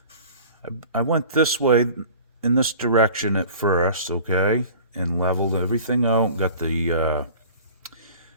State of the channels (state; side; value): inverted; both; correlation -0.43